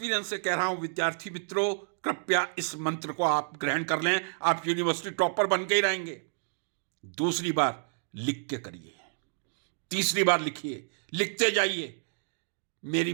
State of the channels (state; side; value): silent; left; digital silence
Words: से कह रहा हूं। विद्यार्थी मित्रों, कृपया इस मंत्र को आप ग्रहण कर लें, आप यूनिवर्सिटी टॉपर बन के ही रहेंगे। दूसरी बार लिख के करिए, तीसरी बार लिखिए, लिखते जाइए। मेरी